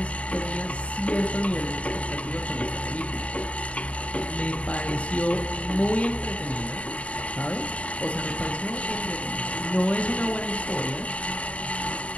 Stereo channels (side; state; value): right; late; 0.064 ms